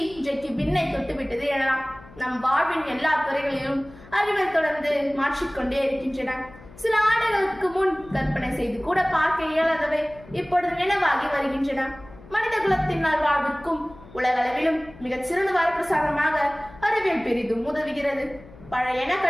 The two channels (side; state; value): left; noise; hum, 20 dB below the sound